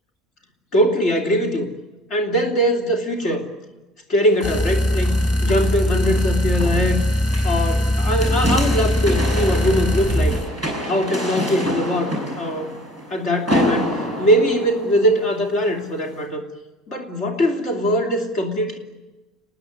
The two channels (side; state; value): both; normal; correlation 0.51